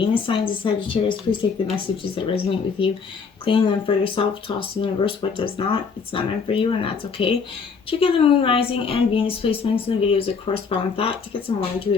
signs of Sagittarius. Please take the messages that resonate with you, claim them for yourself, toss the universe what does not. It's not meant for you, and that's okay. Check out the Moon, Rising, and Venus placements in the videos that correspond with that to get some more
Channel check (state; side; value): quieter; right; 5.4 dB